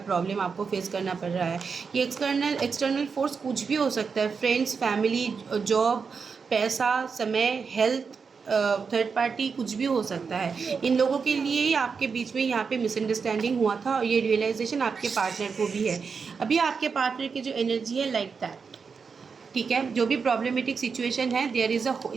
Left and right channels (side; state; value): left; quieter; 5.5 dB